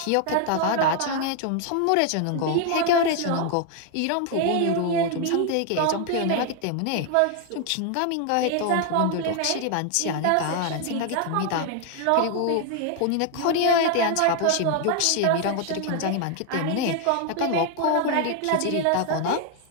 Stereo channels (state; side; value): different; both; correlation 0.00